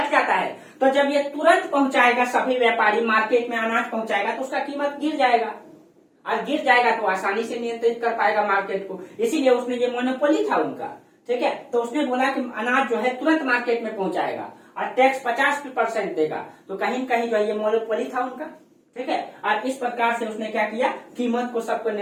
है। तो जब ये तुरंत पहुंचाएगा, सभी व्यापारी मार्केट में अनाज पहुंचाएगा तो उसका कीमत गिर जाएगा, और गिर जाएगा तो आसानी से नियंत्रित कर पाएगा मार्केट को। इसीलिए उसने ये मोनोपोली था उनका। ठीक है, तो उसने बोला कि अनाज जो है तुरंत मार्केट में पहुंचाएगा और टैक्स 50% देगा, तो कहीं न कहीं जो है ये मोनोपोली था उनका। ठीक है, और इस प्रकार से उसने क्या किया, कीमत को सबको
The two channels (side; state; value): both; identical; correlation 1.00